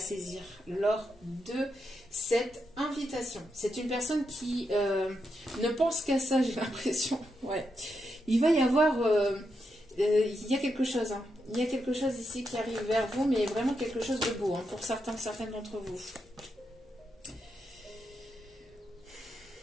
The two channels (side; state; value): both; normal; correlation 0.84